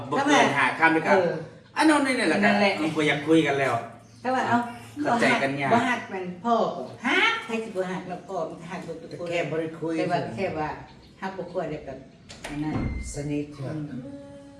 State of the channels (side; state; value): both; identical; correlation 1.00